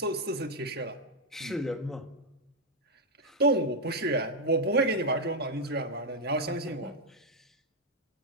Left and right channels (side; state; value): both; normal; correlation 0.01